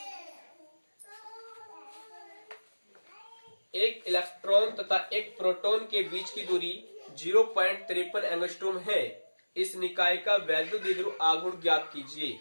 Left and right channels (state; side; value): inverted; both; correlation -1.00